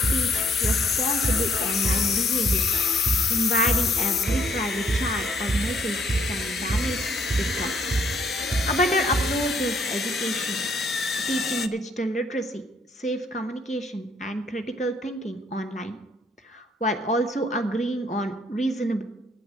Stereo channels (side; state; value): both; normal; correlation 0.66